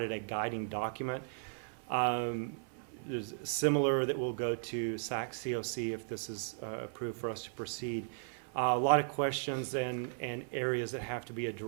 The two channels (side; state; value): left; silent; 54 dB below the other